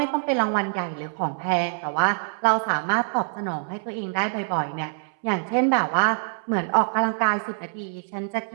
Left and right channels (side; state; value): left; silent; 61 dB below the other